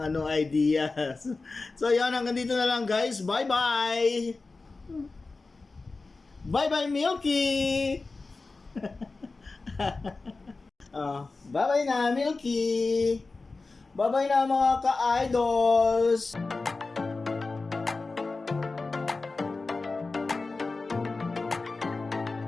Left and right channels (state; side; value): quieter; right; 3.7 dB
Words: ideas. So, yan, hanggang dito na lang guys. Bye-bye! Bye-bye, Milky! Bye-bye na, Milky! Bye-bye na mga ka-idols!